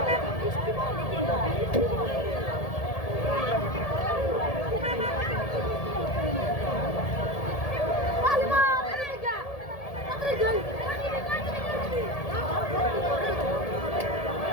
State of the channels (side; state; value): right; late; 1.7 ms